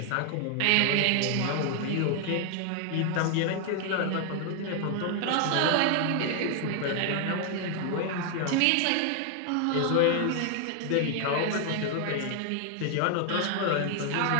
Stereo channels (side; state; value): both; different; correlation 0.00